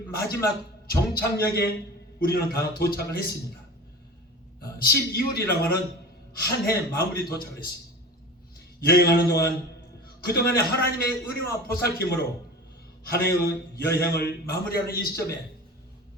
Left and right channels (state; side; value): normal; both; correlation 0.35